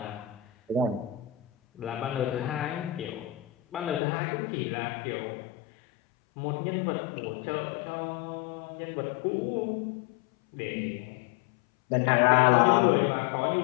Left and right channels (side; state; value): right; drops out; at 4.0 s